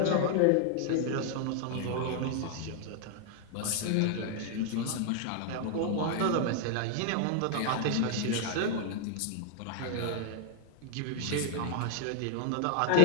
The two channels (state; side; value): different; both; correlation 0.00